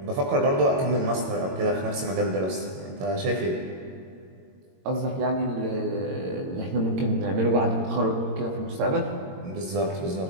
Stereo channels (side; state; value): left; late; 22 ms